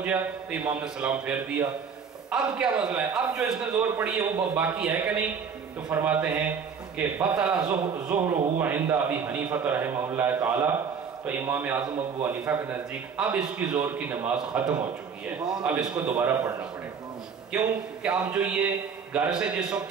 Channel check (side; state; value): left; quieter; 6.3 dB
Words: تو امام نے سلام پھیر دیا. اب کیا مسئلہ ہے, اب جو اس نے زور پڑی ہے وہ باقی ہے کہ نہیں؟ تو فرماتے ہیں کہ بطل ظہرہ عند ابی حنیفہ رحمہ اللہ تعالی, تو امام اعظم ابو حنیفہ کے نزدیک اب اس کی زور کی نماز ختم ہو چکی ہے, اب اس کو دوبارہ پڑھنا پڑے گا. کیوں کہ اب جو یہ گھر سے جس وقت